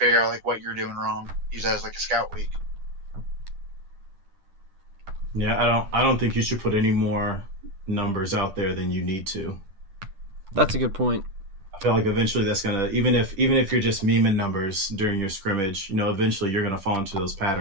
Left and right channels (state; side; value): late; left; 10 ms